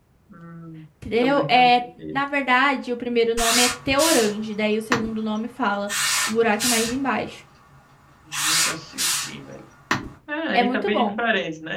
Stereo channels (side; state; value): both; identical; correlation 1.00